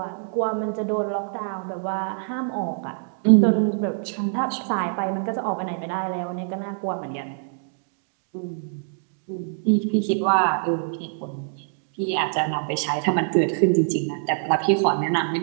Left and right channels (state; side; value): silent; left; digital silence